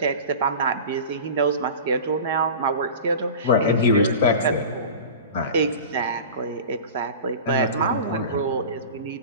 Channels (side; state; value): both; inverted; correlation -0.34